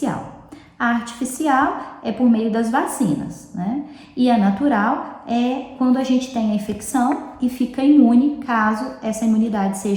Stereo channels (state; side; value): identical; both; correlation 1.00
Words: A artificial é por meio das vacinas, né? E a natural é quando a gente tem a infecção e fica imune caso essa imunidade